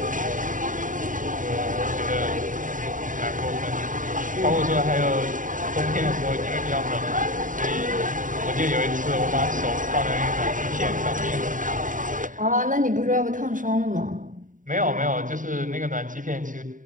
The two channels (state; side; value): late; left; 0.38 ms